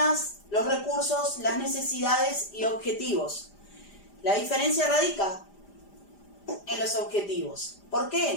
los recursos, las necesidades y objetivos. La diferencia radica en los objetivos. ¿Por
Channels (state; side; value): late; right; 5.0 ms